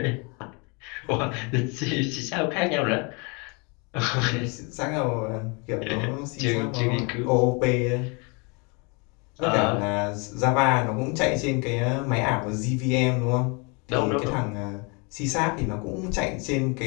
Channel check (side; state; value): right; quieter; 31.4 dB